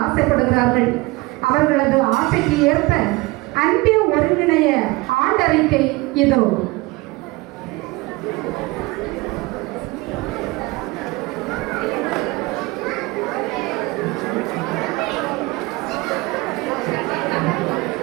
ஆசைப்படுகிறார்கள். அவர்களது ஆசைக்கு ஏற்ப அன்பிய ஒருங்கிணைய ஆண்டறிக்கை இதோ.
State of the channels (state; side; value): quieter; left; 22.9 dB